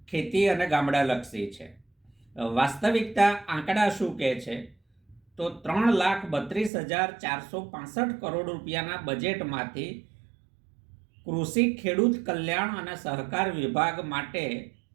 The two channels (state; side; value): drops out; left; at 6.7 s